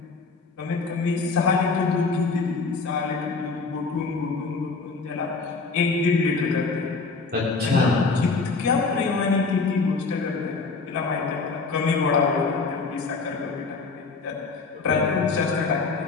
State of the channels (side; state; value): right; quieter; 4.3 dB